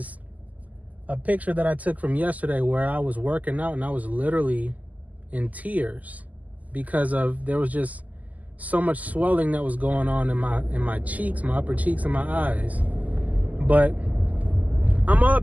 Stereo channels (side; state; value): left; late; 0.077 ms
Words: a picture that I took from yesterday where I was working out and I was literally in tears because there was just so much swelling that was going on in my cheeks, my upper cheeks and my eyes. But I'm all